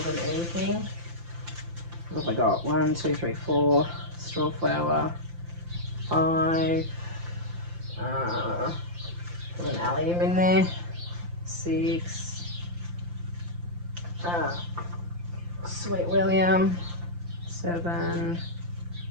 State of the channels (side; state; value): left; late; 5.8 ms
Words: than anything. What have I got? 1, 2, 3, 4 straw flower, 5, put an allium in there, 6, Sweet William, 7,